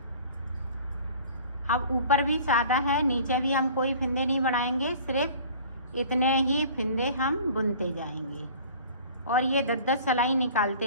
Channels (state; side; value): inverted; both; correlation -0.46